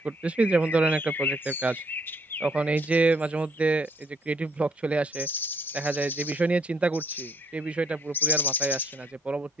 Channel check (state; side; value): normal; both; correlation 0.66